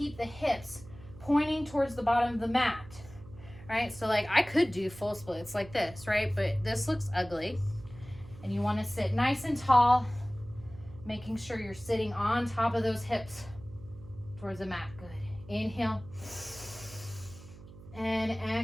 the hips pointing towards the bottom of the mat, right? So like I could do full splits like this, right? But this looks ugly. And you want to sit nice and tall, making sure you're sitting on top of those hips towards the mat. Good. Inhale. And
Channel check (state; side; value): noise; right; hum, 18 dB below the sound